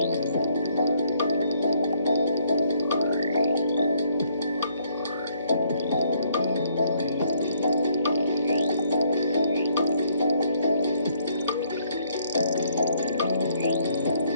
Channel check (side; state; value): both; inverted; correlation -0.68